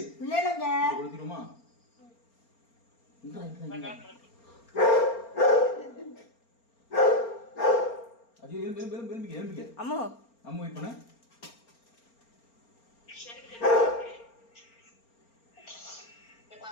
இல்லைங்க கொடுத்துருமா? அம்மு அம்மு வெயிட் பண்ண.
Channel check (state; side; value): late; right; 4.4 ms